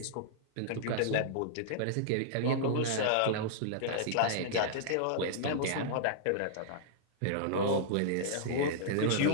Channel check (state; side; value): different; both; correlation -0.02